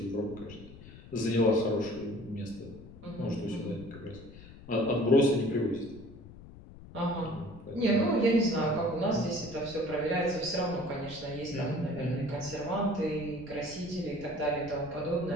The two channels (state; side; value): noise; left; rumble, 17 dB below the sound